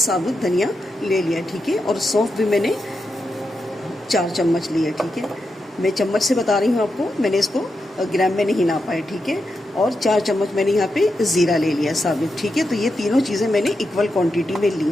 धनिया ले लिया, ठीक है। और सौंफ भी मैंने 4 चम्मच लिया, ठीक है। मैं चम्मच से बता रही हूँ आपको, मैंने इसको ग्राम में नहीं नापा है, ठीक है। और 4 चम्मच मैंने यहाँ पे ज़ीरा ले लिया साबित, ठीक है। तो ये तीनों चीज़ें मैंने इक्वल क्वांटिटी में ली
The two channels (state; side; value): normal; both; correlation 0.87